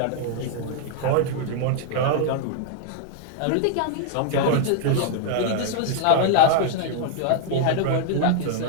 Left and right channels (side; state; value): both; different; correlation -0.01